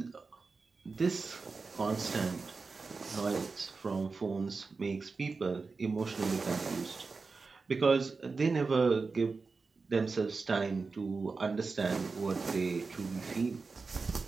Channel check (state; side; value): quieter; left; 4.3 dB